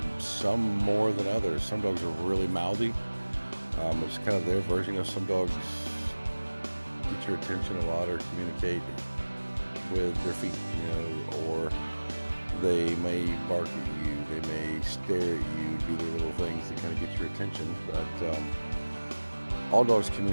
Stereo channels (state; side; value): inverted; both; correlation -1.00